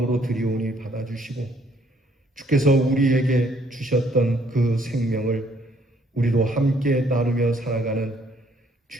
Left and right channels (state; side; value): normal; both; correlation 0.65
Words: 드리오니 받아주시고 주께서 우리에게 주셨던 그 생명을 우리도 함께 나누며 살아가는